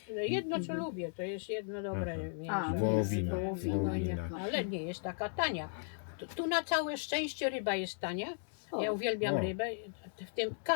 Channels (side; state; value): right; silent; digital silence